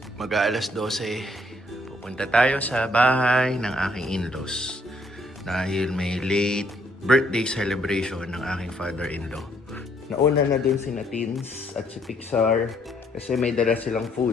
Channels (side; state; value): both; normal; correlation 0.68